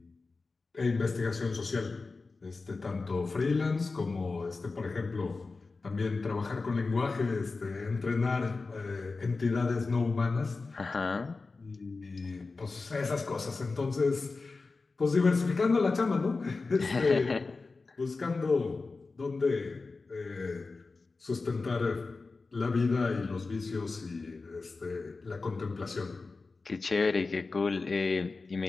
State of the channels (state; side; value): quieter; right; 3.9 dB